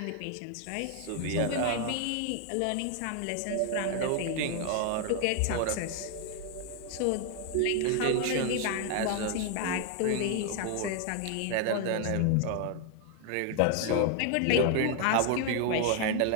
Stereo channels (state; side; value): different; both; correlation 0.00